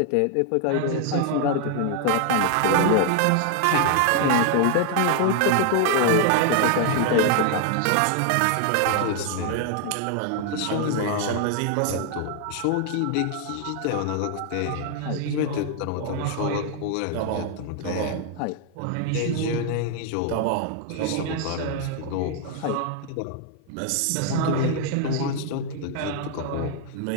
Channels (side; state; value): both; different; correlation 0.00